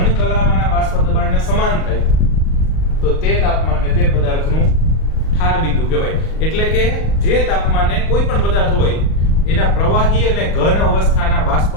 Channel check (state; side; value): late; right; 38 ms